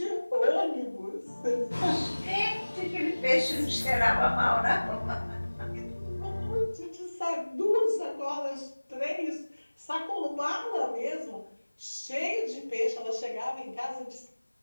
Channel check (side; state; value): both; inverted; correlation -1.00